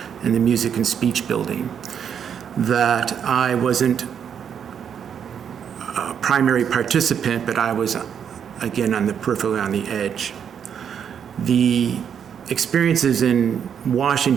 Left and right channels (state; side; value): quieter; left; 8.0 dB